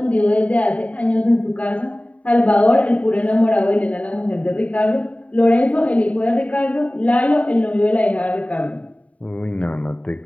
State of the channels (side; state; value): right; late; 0.067 ms